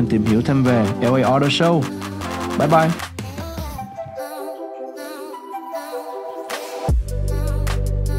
tìm hiểu thêm về LA Auto Show. Bye bye.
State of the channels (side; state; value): both; identical; correlation 1.00